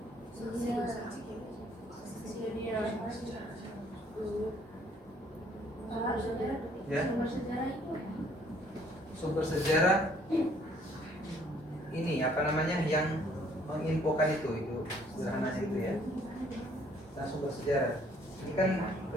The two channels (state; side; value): normal; both; correlation 0.62